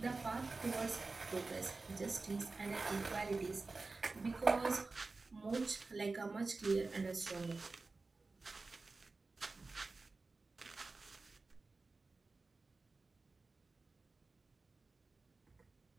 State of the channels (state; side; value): quieter; left; 3.7 dB